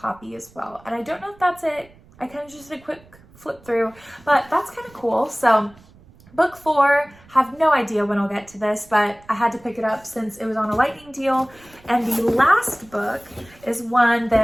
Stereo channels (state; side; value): noise; right; rumble, 26 dB below the sound